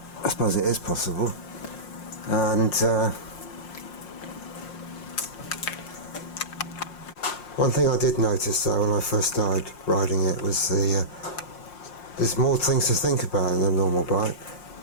I suppose it is possible. And one thing I did notice though when I first started riding it was there's more things to think about than a normal bike.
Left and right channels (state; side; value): late; right; 5.6 ms